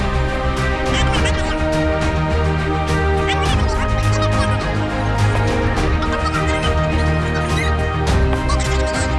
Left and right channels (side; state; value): both; identical; correlation 1.00